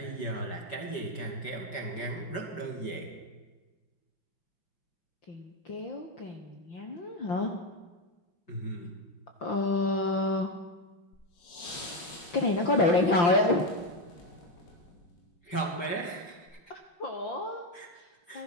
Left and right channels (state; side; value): late; right; 5.8 ms